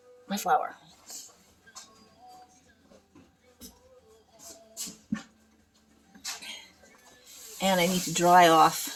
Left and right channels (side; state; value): both; identical; correlation 1.00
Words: my flour. And I need to dry off